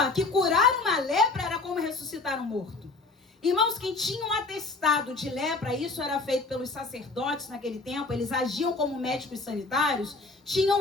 que curar uma lepra era como ressuscitar um morto. Irmãos, quem tinha um atestado de lepra, isso era feito pelos sacerdotes naquele tempo, eles agiam como médicos sanitários, tinham um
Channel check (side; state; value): right; quieter; 3.6 dB